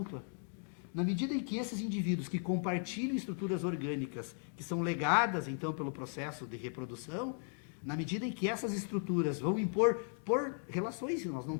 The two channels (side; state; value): right; silent; 53 dB below the other